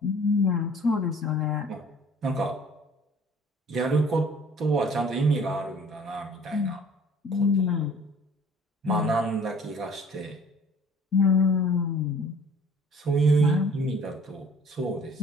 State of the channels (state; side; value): normal; both; correlation 0.52